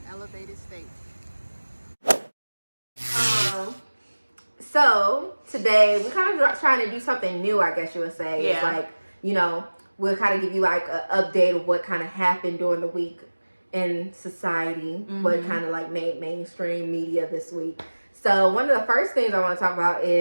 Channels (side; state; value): both; inverted; correlation -1.00